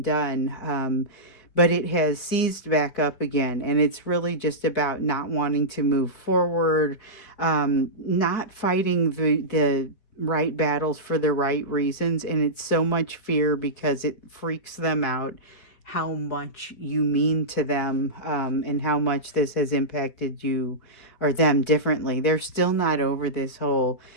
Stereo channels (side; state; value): right; late; 4.6 ms